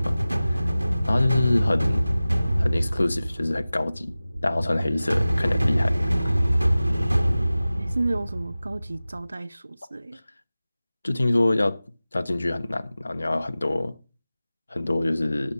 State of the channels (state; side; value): inverted; both; correlation -0.97